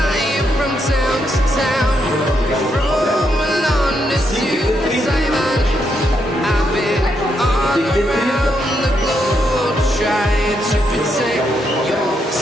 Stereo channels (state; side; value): normal; both; correlation 0.79